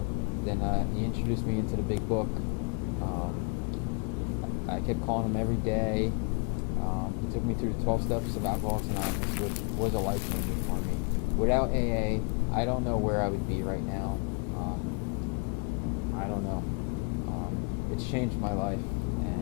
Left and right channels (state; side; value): quieter; right; 34.7 dB